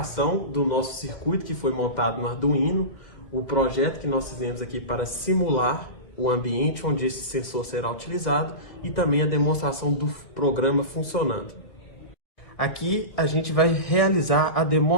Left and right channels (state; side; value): late; right; 2.1 ms